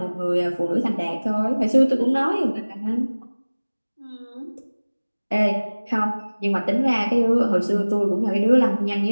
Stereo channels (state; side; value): inverted; both; correlation -1.00